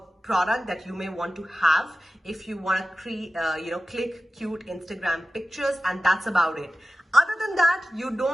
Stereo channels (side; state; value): both; normal; correlation 0.95